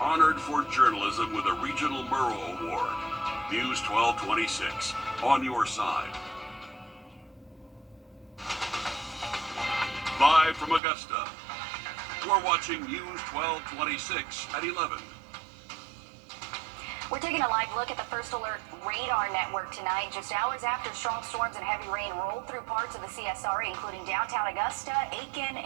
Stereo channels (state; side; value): drops out; left; at 10.8 s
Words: honored for journalism with a Regional Murrow Award. News 1226, on your side. Live from Augusta, we're watching News 1226 at 11. We're taking a live look at the First Alert radar network tonight, just hours after strong storms and heavy rain rolled through parts of the CSRA, including downtown Augusta, Aiken,